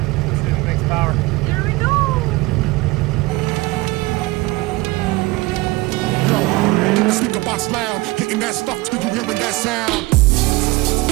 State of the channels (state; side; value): quieter; left; 22.2 dB